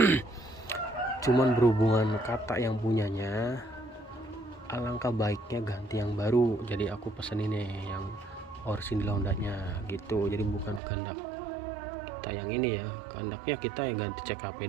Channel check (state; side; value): drops out; left; at 10.8 s